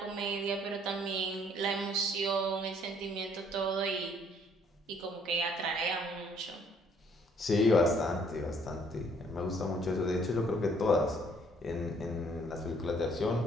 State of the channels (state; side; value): normal; both; correlation 0.63